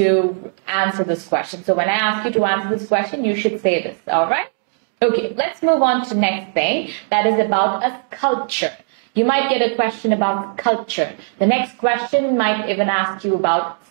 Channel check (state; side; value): silent; left; digital silence